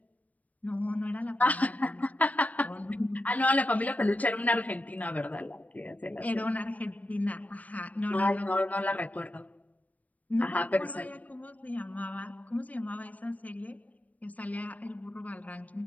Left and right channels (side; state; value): right; late; 0.072 ms